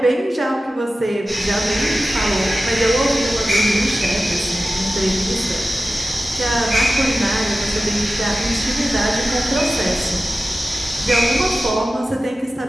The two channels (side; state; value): both; normal; correlation 0.94